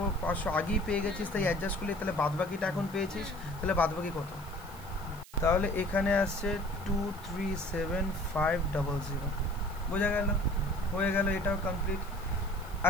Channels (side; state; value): right; noise; hiss, 21 dB below the sound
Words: আগেই পেয়ে গেছিস, তাই অ্যাডজাস্ট করলে তাহলে বাদবাকিটা এখন পেয়েছিস, তাহলে বাদবাকি কত, তাহলে এখানে আসছে 237,500, বোঝা গেল, হয়ে গেল, এটাও কমপ্লিট।